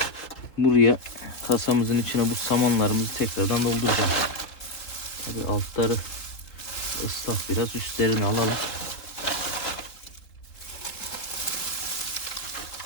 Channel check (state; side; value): late; right; 3.9 ms